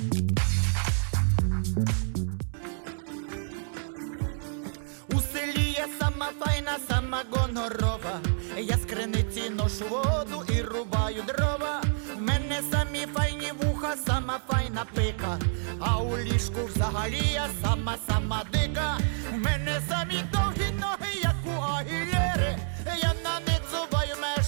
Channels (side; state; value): left; silent; 59 dB below the other